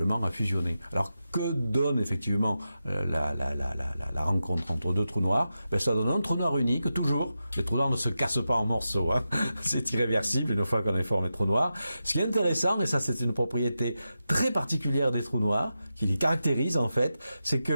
à fusionner. Alors que donne effectivement la rencontre entre deux trous noirs? Ben, ça donne un trou noir unique, toujours. Les trous noirs ne se cassent pas en morceaux, hein. C'est irréversible une fois qu'on a formé trou noir. Ce qui est intéressant, et ça c'est une propriété très particulière des trous noirs, qui les caractérise en fait, c'est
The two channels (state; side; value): inverted; both; correlation -0.90